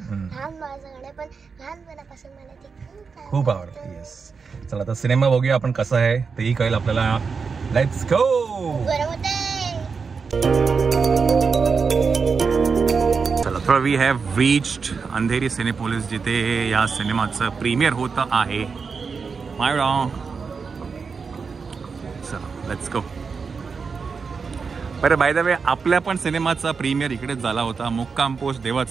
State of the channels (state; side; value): quieter; left; 5.3 dB